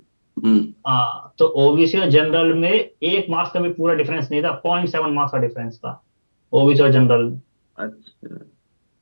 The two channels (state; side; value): inverted; both; correlation -1.00